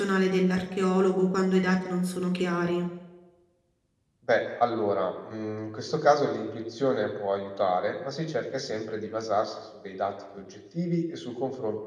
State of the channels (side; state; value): both; identical; correlation 1.00